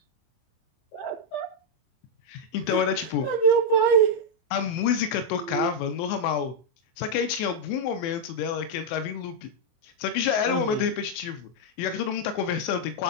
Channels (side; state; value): right; late; 24 ms